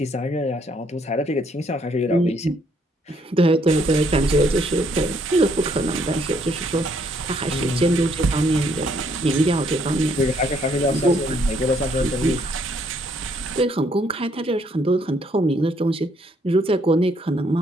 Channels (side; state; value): both; normal; correlation 0.68